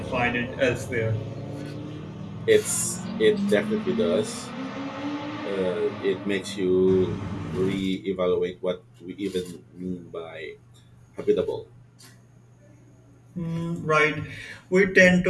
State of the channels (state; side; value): identical; both; correlation 1.00